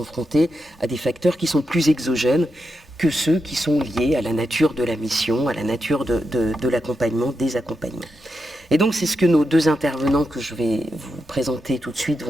à des facteurs qui sont plus exogènes que ceux qui sont liés à la nature de la mission, à la nature de l'accompagnement, des accompagnements. Et donc c'est ce que nos deux intervenants que je vais vous présenter tout de suite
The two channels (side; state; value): both; normal; correlation 0.86